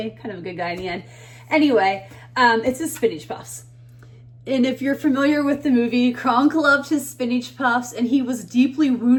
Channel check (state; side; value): identical; both; correlation 1.00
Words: Kind of a good guy in the end. Anyway, it's his spinach puffs. And if you're familiar with the movie, Kronk loved his spinach puffs, and he was deeply